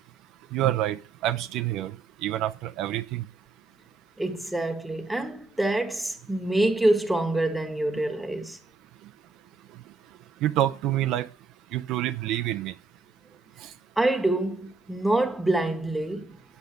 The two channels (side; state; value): left; quieter; 3.9 dB